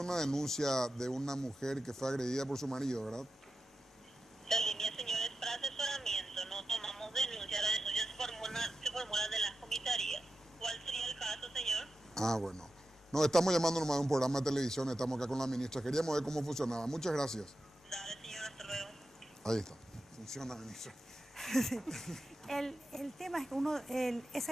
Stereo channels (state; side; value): normal; both; correlation 0.91